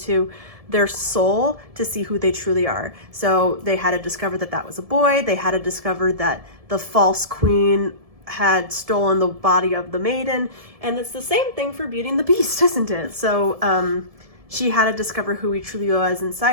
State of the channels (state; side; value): late; left; 1.7 ms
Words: their soul to see who they truly are. So they had to discover that that was a boy. They had to discover that the false queen had stolen the body of the maiden. And it's the same thing for Beauty and the Beast, isn't it? So she had to discover who he truly was